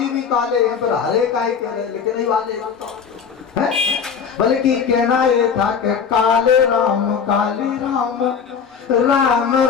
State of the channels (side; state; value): right; quieter; 6.7 dB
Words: भी काले हैं, फिर हरे काहे कह रहे? लेकिन नहीं वाले हैं, बल्कि कहना ये था कि काले राम राम